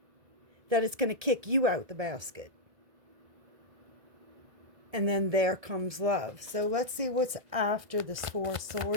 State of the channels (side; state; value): left; late; 1.7 ms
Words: that it's going to kick you out the basket. And then there comes love. So let's see what's after this Four of